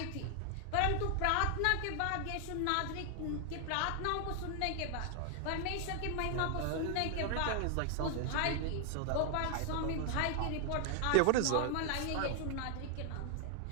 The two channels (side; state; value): both; different; correlation 0.00